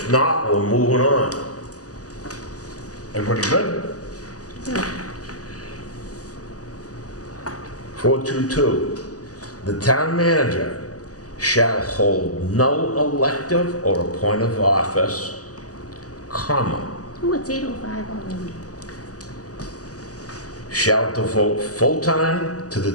not, we're moving on. Everybody good? Yeah. 422, the town manager shall hold no elective or appointive office, comma, Oh, it's 8:05 already. shall devote full time to the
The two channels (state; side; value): late; right; 0.67 ms